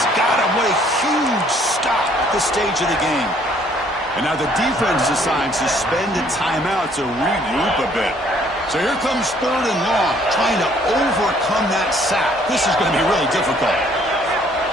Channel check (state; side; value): normal; both; correlation 0.62